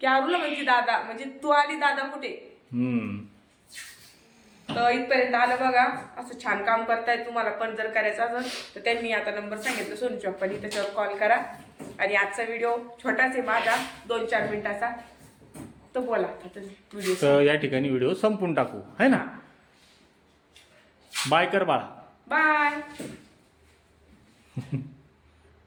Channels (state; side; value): identical; both; correlation 1.00